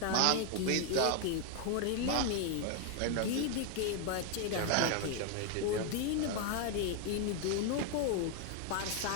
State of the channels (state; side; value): different; both; correlation 0.01